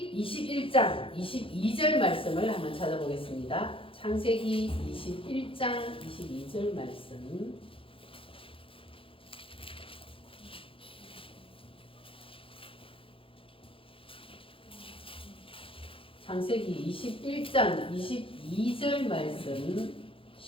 21장 22절 말씀을 한번 찾아보겠습니다. 창세기 21장 22절 말씀. 창세기 21장 22절 말씀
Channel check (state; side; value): late; right; 0.26 ms